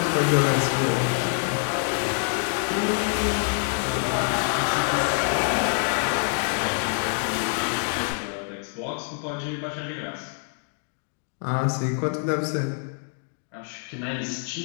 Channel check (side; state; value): right; silent; 61 dB below the other